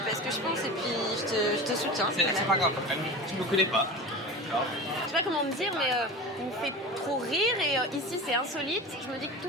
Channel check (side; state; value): both; normal; correlation 0.31